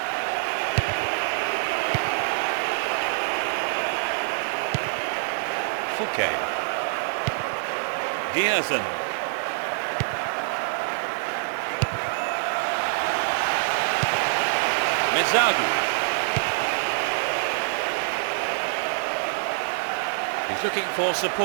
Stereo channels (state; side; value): silent; left; digital silence